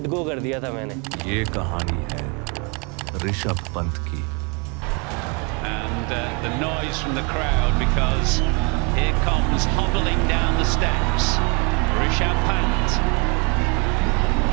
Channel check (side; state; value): left; quieter; 32.7 dB